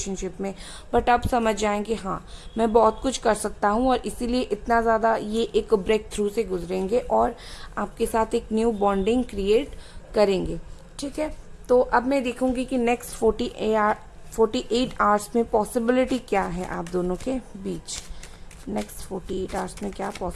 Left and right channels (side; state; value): both; identical; correlation 1.00